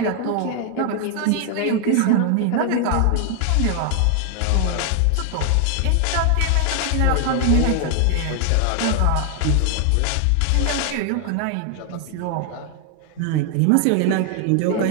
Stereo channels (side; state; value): both; different; correlation 0.00